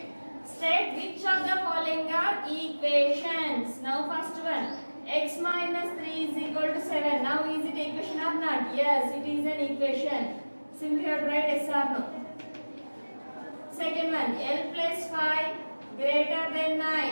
State which of the following are equations. Now first one. X minus 3 is equal to 7. Now is it equation or not? Yes, it is an equation. Simply have to write yes or no. Second one. L plus 5 greater than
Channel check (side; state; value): both; inverted; correlation -1.00